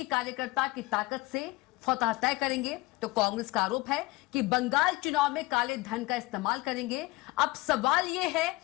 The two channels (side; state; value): right; quieter; 21.3 dB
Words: कार्यकर्ता की ताकत से फतह तय करेंगे, तो कांग्रेस का आरोप है कि बंगाल चुनाव में काले धन का इस्तेमाल करेंगे। अब सवाल यह है